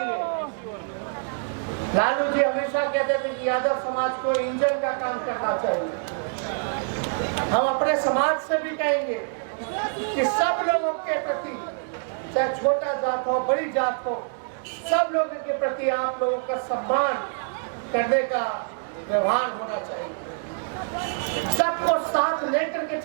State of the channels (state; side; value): silent; left; digital silence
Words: लालू जी हमेशा कहते थे कि यादव समाज को इंजन का काम करना चाहिए। हम अपने समाज से भी कहेंगे कि सब लोगों के प्रति, चाहे छोटा जात हो, बड़ी जात हो, सब लोगों के प्रति आप लोगों का सम्मान करने का व्यवहार होना चाहिए। सबको साथ लेकर के